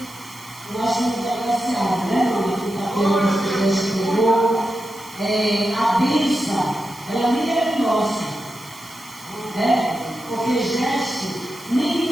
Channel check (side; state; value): right; noise; hiss, 20 dB below the sound